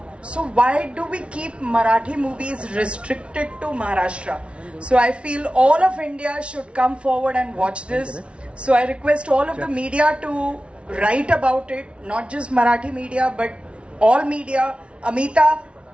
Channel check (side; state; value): left; late; 0.060 ms